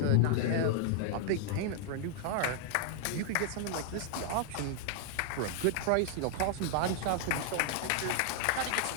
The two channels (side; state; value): both; different; correlation 0.00